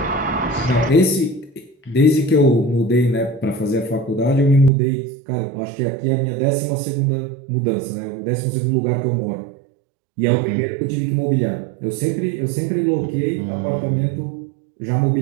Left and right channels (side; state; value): left; drops out; at 4.7 s